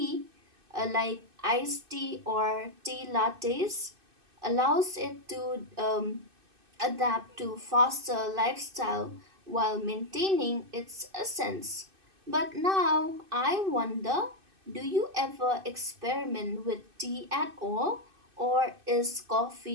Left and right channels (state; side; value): late; left; 2.6 ms